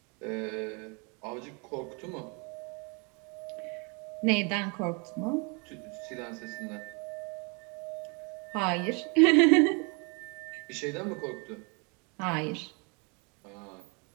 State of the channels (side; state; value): left; quieter; 32.6 dB